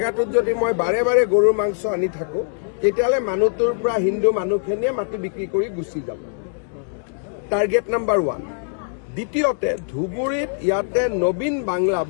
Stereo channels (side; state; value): right; silent; digital silence